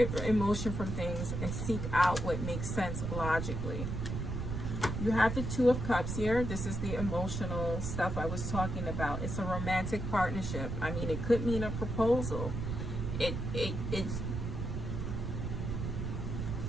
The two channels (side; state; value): right; noise; rumble, 3 dB below the sound